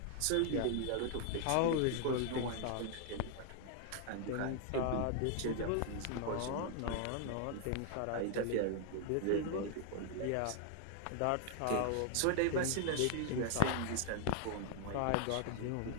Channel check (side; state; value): both; different; correlation 0.00